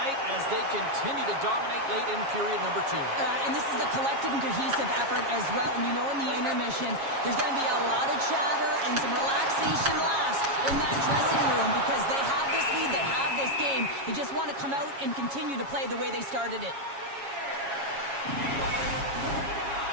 as they continue to dominate late in period number 2. And this is a collective and cohesive effort as well. And you know in the intermission, there's going to be a lot of chatter and some relaxation last in that dressing room because they have this lead, they have this game. They just want to come out and continue to play the way they started it.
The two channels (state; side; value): late; left; 7.3 ms